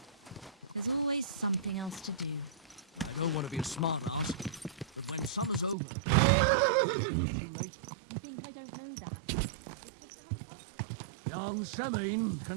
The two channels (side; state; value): left; drops out; at 5.8 s